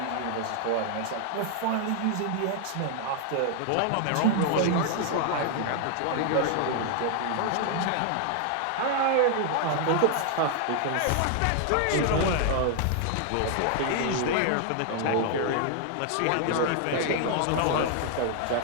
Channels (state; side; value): different; both; correlation 0.00